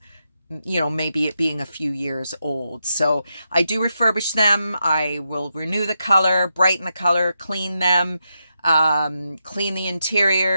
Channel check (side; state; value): both; inverted; correlation -0.85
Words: maybe it being a few years old. So I do refurbish them. I will renew the color, brighten the color, clean them, clean the